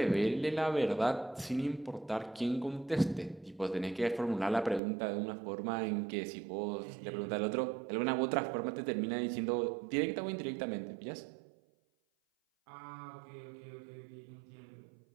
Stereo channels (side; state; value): left; drops out; at 4.8 s